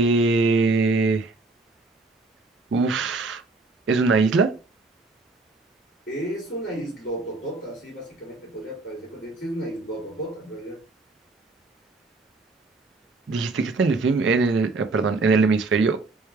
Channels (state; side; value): quieter; left; 3.5 dB